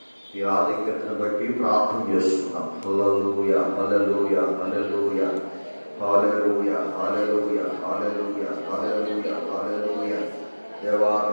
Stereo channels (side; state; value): both; inverted; correlation -1.00